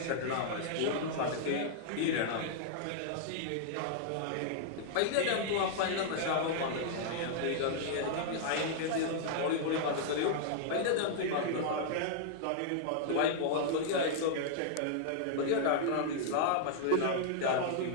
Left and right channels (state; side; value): different; both; correlation -0.01